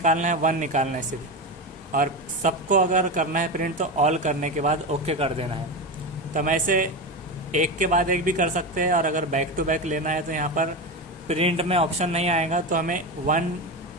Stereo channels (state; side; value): normal; both; correlation 0.18